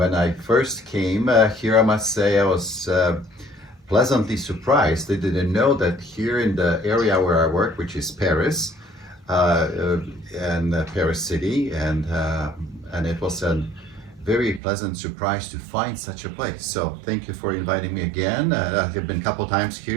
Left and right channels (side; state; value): left; drops out; at 14.6 s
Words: I first came here, I must say I was pleasantly surprised. I didn't know that here in the area where I work, which is Paris, and Paris City, and it was a very pleasant surprise to find such a place. So thank you for inviting me again. I've been a couple times